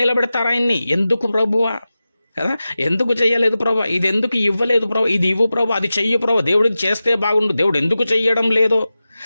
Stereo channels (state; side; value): inverted; both; correlation -0.94